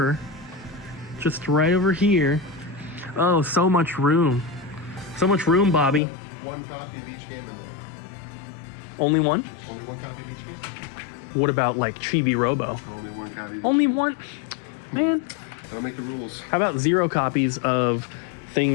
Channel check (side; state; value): right; drops out; at 6.0 s